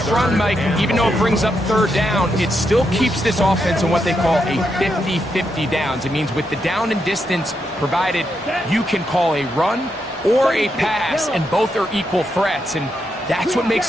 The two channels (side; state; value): both; normal; correlation 0.82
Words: run, Mike, even though it brings up third down, it still keeps this offense in what they call a 50-50 downs. It means with the down and distance provided, you can call a run or a pass, and both are equal threats. And that's what